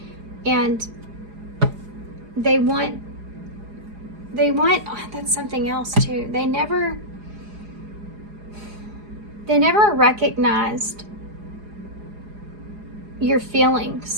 And they want, oh, that's something else too. They never recognized your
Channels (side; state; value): left; late; 4.8 ms